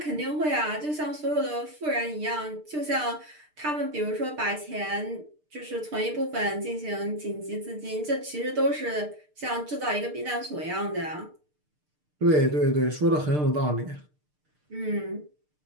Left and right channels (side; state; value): left; late; 6.7 ms